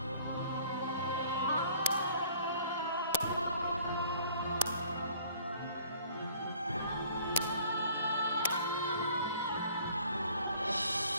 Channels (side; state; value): both; inverted; correlation -0.54